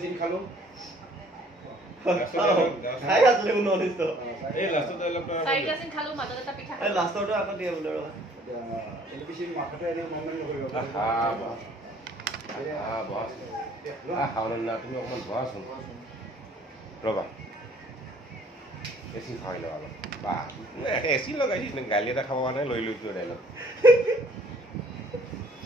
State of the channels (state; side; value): normal; both; correlation 0.58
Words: চিন খালো খাই আছিলে কোনো অনিষ্ট এই লাষ্টত অলপ চাৰিটা চিন খালো মাজত এটা পিঠা এই লাষ্টৰটো আকৌ দিয়ে বোলে ৰবা এলপিচি মাথাটো এনে মনমান নকৰিব হাওনা তুমি অকণমান বহাচোন ৰ'বা এচি খাই লওঁ অলপ বা এচি লগাইছিস গালি এটা খাব কাৰণে লৈ লৈছো ডাইলগ